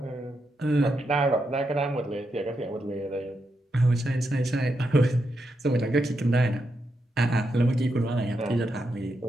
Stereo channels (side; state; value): both; normal; correlation 0.84